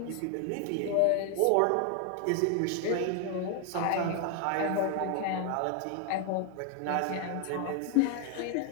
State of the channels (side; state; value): both; different; correlation 0.01